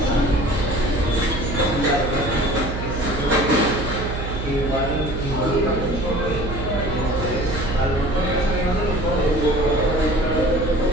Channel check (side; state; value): right; noise; hum, 5 dB below the sound